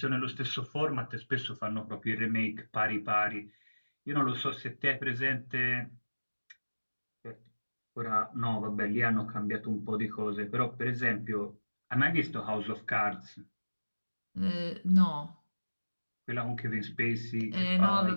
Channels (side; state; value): both; inverted; correlation -1.00